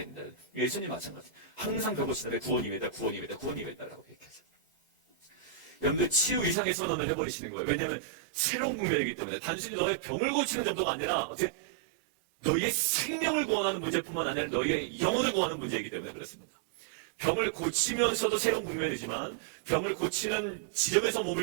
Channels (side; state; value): left; drops out; at 6.6 s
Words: 된다. 예수님 마찬가지. 항상 배고시는데 구원임이다, 구원임이다, 구원임이다라고 얘기하죠. 여러분들 치유 이상의 선언을 해버리시는 거예요. 왜냐하면 새로운 국면이기 때문에 단순히 너의 병을 고치는 정도가 아니라 어떻게 너희의 생명을 구원하는 문제뿐만 아니라 너희의 영혼을 구원하는 문제이기 때문에 그렇습니다. 병을 고치면서도 새로운 국면이지만 병을 고치는 지점에서